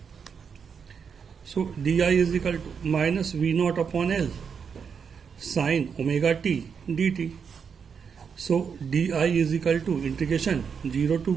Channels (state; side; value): quieter; left; 6.5 dB